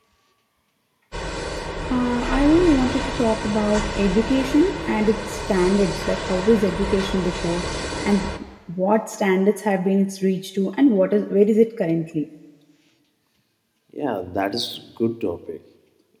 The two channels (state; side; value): identical; both; correlation 1.00